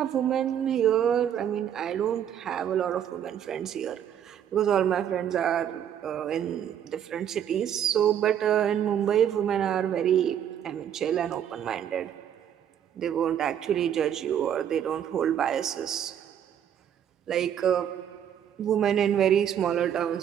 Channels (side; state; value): left; quieter; 9.5 dB